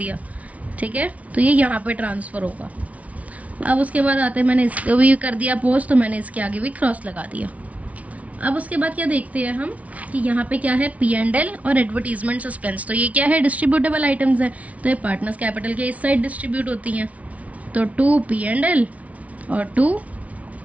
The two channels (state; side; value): late; left; 0.068 ms